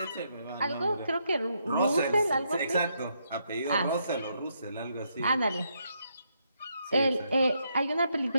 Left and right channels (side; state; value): both; inverted; correlation -0.77